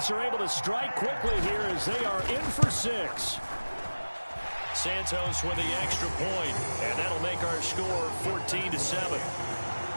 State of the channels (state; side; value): inverted; both; correlation -1.00